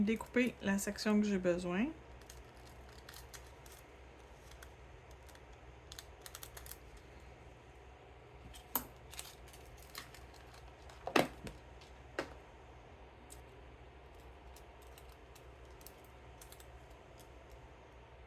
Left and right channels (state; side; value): identical; both; correlation 1.00